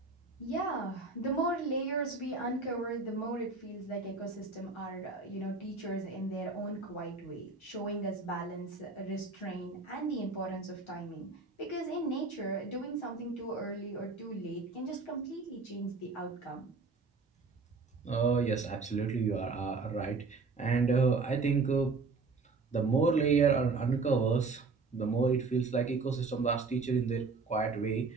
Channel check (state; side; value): quieter; left; 4.2 dB